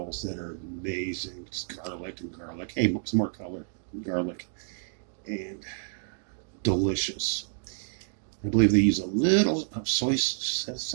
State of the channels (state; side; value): silent; left; digital silence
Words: that are amazing. Just garlic. Hey, some more color. Garlic. And delicious. I believe they use a little of